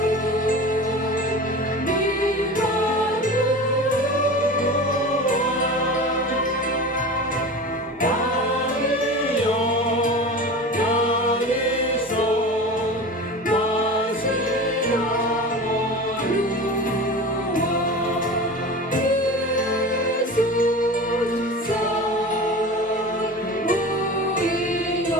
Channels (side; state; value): both; normal; correlation 0.33